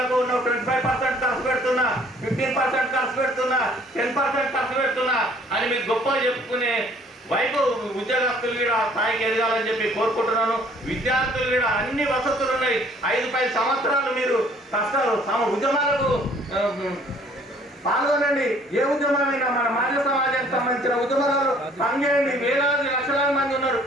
25% ఖర్చు పెడుతున్నా, 15% ఖర్చు పెడుతున్నా, 10% ఖర్చు పెడుతున్నా అని మీకు గొప్ప చెప్పుకునే వైపు ఉద్యోగస్తులు కూడా స్థాయికి ఎదగాలని చెప్పి కోరుకుంటున్నాను. విద్యార్థులు కూడా అన్ని వసతులు ఉన్నాయి. 5-10 సంవత్సరాలు మీరు కష్టాలు ఉద్యమాలకు పాల్గొనండి. ఏ ఉద్యమమైనా మన మానవ సమాజానికి సంబంధించిన ఉద్యమాలు పనిచేయండి. వేలాది లక్షలాది మంది ఉన్నారు.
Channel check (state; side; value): normal; both; correlation 0.58